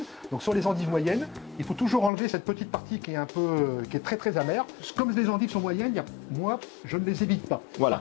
Donc, sur les endives moyennes, il faut toujours enlever cette petite partie qui est très amère. Comme les endives sont moyennes, moi, je ne les évite pas. Voilà.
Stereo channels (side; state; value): right; drops out; at 2.1 s